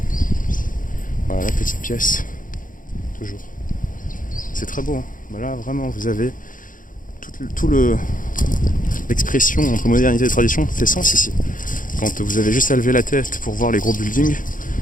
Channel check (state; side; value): late; right; 0.39 ms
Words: Voilà la petite pièce. Toujours. C'est très beau, hein. Bah là vraiment vous avez tout l'expression entre modernité et tradition fait sens ici. Quand vous avez juste à lever la tête pour voir les gros buildings